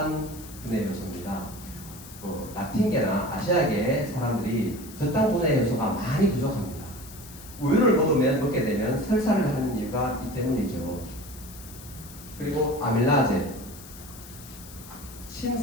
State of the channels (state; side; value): noise; left; hiss, 17 dB below the sound